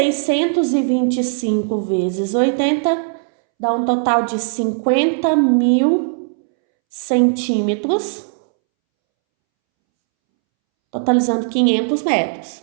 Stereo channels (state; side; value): silent; left; 67 dB below the other